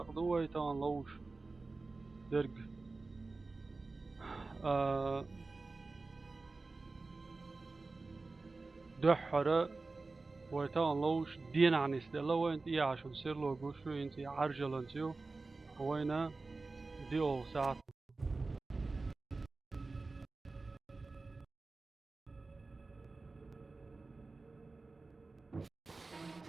вайтан ловзуш derg دحرة ويتان لوش دين عن استلا وين تي عشان سير لو جوشو انتي عرجلانتيو وينا دي او ساعات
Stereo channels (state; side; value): quieter; left; 3.6 dB